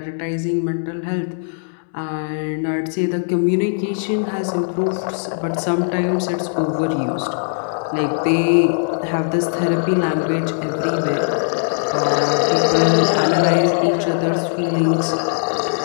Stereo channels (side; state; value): right; silent; digital silence